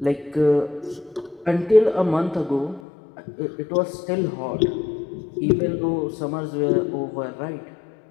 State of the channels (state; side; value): drops out; right; at 2.8 s